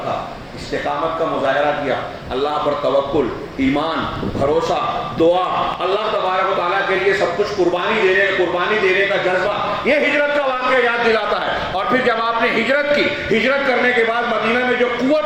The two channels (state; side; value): identical; both; correlation 1.00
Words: استقامت کا مظاہرہ کیا، اللہ پر توکل، ایمان، بھروسہ، دعا، اللہ تبارک و تعالیٰ کے لیے سب کچھ قربانی دینے کا جذبہ. یہ ہجرت کا واقعہ یاد دلاتا ہے. اور پھر جب آپ نے ہجرت کی، ہجرت کرنے کے بعد مدینہ میں جو